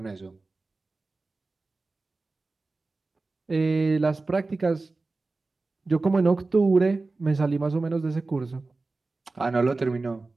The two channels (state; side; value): quieter; left; 3.5 dB